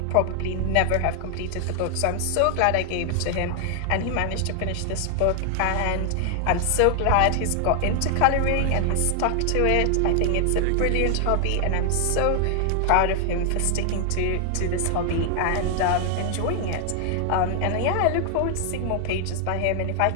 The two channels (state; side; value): different; both; correlation 0.00